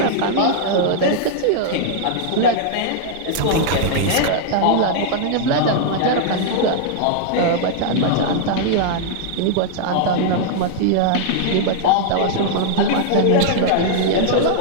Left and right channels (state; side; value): different; both; correlation -0.01